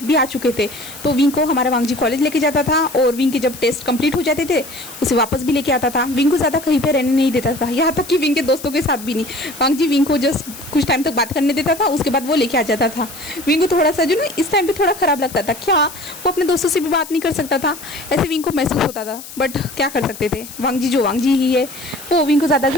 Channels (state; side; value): noise; left; hiss, 14 dB below the sound